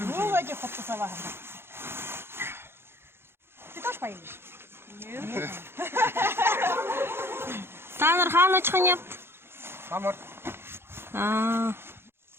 Вроде хуптасава. Ты тоже поедешь? Нет. Танар хаан очхын япт? Самар.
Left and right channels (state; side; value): late; left; 0.11 ms